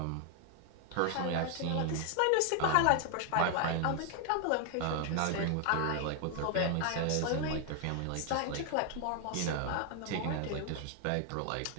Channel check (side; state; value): both; different; correlation 0.00